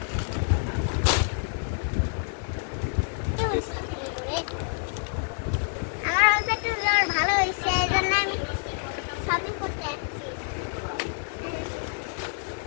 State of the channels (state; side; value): silent; right; 60 dB below the other